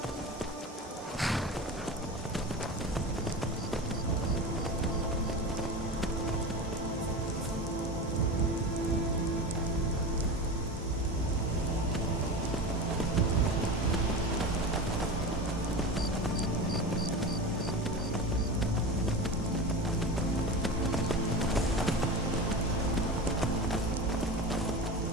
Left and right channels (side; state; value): both; normal; correlation 0.27